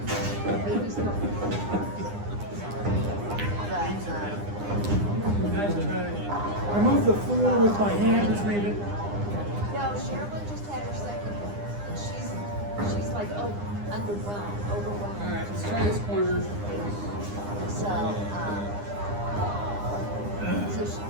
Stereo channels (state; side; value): late; left; 9.8 ms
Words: Baby's going. I move the floor with my hand, just leave it. No, Sherilyn just had her second. She's like, oh, overwhelmed. All right, let's try this corner. So,